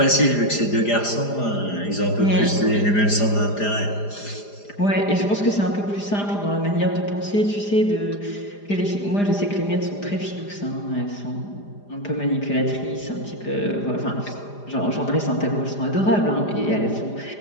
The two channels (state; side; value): late; right; 4.9 ms